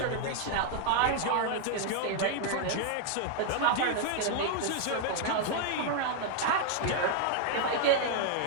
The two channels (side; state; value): both; different; correlation 0.00